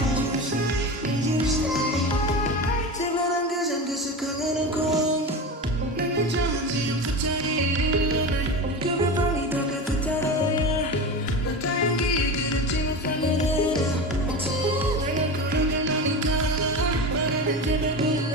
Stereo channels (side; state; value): both; normal; correlation 0.26